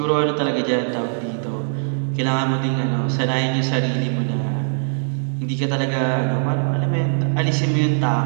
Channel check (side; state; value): left; silent; 62 dB below the other